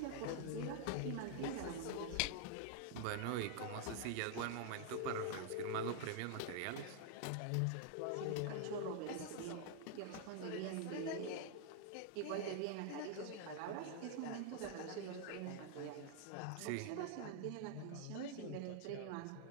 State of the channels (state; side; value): different; both; correlation 0.00